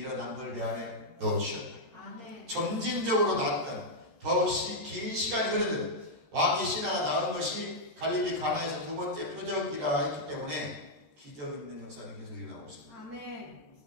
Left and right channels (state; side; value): late; left; 13 ms